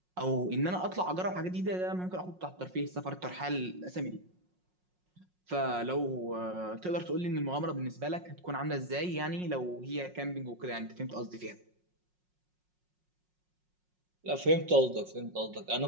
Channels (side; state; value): left; late; 5.5 ms